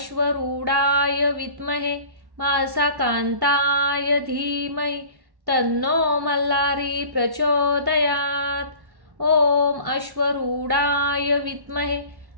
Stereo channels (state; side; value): late; left; 1.1 ms